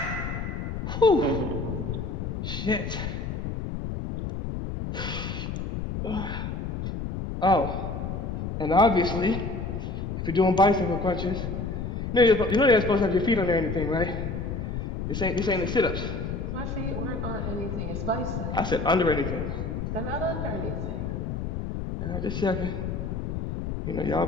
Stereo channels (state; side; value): noise; left; rumble, 4 dB below the sound